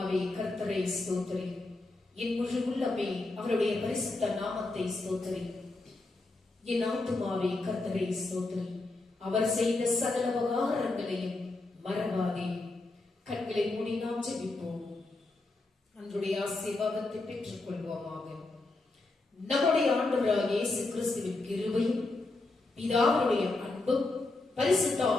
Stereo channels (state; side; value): quieter; right; 3.1 dB